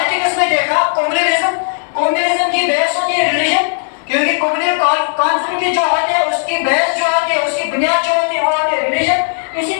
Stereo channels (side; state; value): right; silent; 59 dB below the other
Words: में देखा कम्युनलिज्म की बेस होती है रिलीजन, क्योंकि कम्युनल कॉन्फ्लिक्ट जो होते हैं उसकी बेस जो होती है, उसकी बुनियाद जो होती है वो होती है रिलीजन। इसी